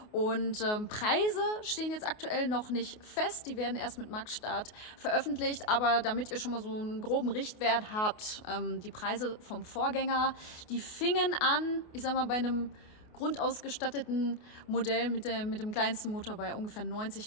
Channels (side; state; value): right; late; 28 ms